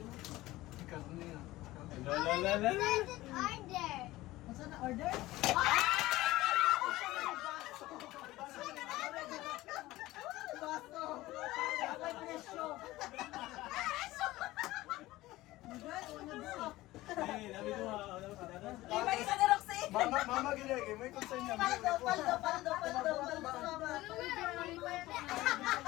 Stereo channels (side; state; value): right; quieter; 17.7 dB